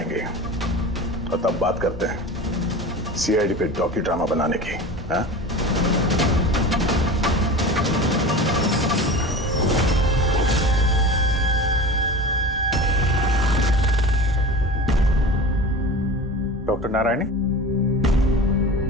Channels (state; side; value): normal; both; correlation 0.33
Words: और तब बात करते हैं सीआईडी पे डॉक्यू ड्रामा बनाने की। हाँ? डॉक्टर नारायणी?